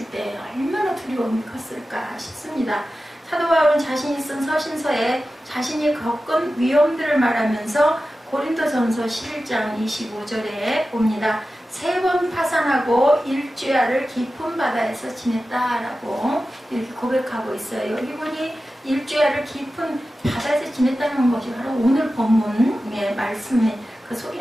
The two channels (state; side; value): normal; both; correlation 0.94